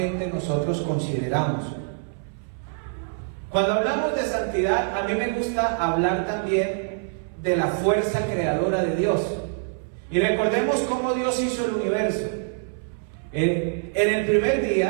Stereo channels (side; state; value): left; silent; 62 dB below the other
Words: nosotros consideramos. Cuando hablamos de santidad, a mí me gusta hablar también de la fuerza creadora de Dios. Y recordemos cómo Dios hizo el universo. En el primer